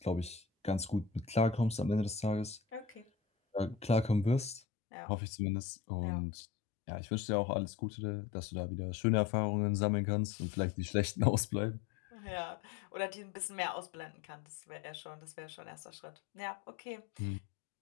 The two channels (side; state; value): right; drops out; at 4.6 s